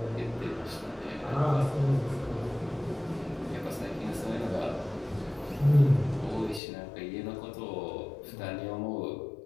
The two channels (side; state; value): right; drops out; at 6.6 s